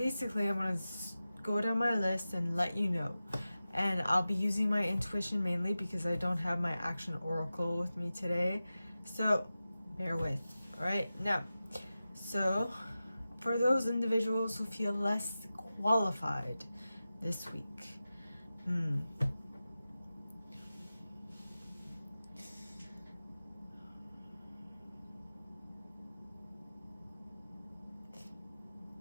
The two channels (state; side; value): inverted; both; correlation -0.94